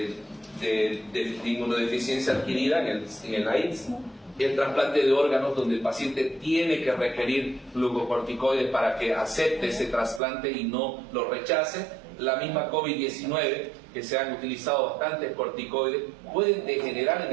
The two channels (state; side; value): drops out; left; at 10.2 s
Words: inmunodeficiencia adquirida en el AIDS, el trasplante de órganos, donde el paciente tiene que requerir glucocorticoides para que acepte ese trasplante y no lo rechace. La misma COVID-19, que se han utilizado bastantes corticoides, pueden degenerar